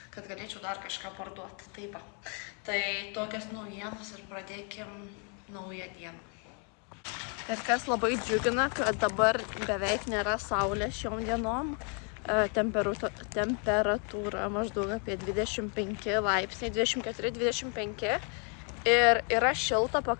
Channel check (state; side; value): quieter; right; 37.8 dB